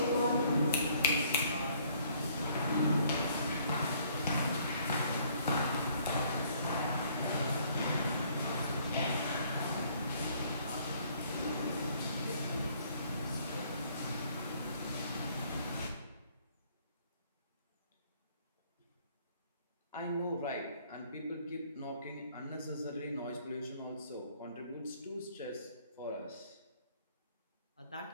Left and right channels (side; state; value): both; inverted; correlation -0.62